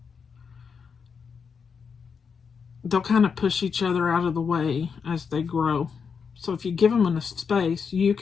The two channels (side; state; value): right; quieter; 6.0 dB